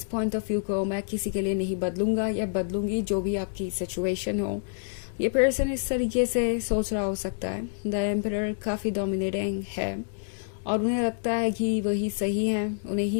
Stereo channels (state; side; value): silent; right; digital silence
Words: पॉइंट ऑफ व्यू को मैं किसी के लिए नहीं बदलूंगा या बदलूंगी, जो भी आपकी सिचुएशन हो। ये पर्सन इस तरीके से सोच रहा हो सकता है, द एम्परर काफ़ी डोमिनेटिंग है और उन्हें लगता है कि वही सही है, उन्हें